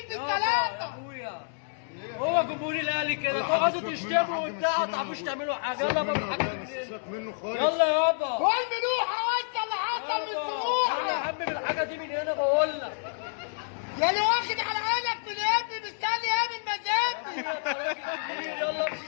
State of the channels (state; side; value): silent; right; 57 dB below the other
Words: يا بالثلاثه. اخويا هو جمهور الاهلي كده تقعدوا تشتموا وبتاع ما تعرفوش تعملوا حاجه. يلا بقى بالحاجه منه خالص. يلا يابا. كل ملوحه وانت اللي حصل من يلا يا سموحه. عم بالحاجه دي من هنا بقول لك. يا اللي واخد على عينك من ابني مستني ايه من مزاجي. انت راجل كبير. يلا امشي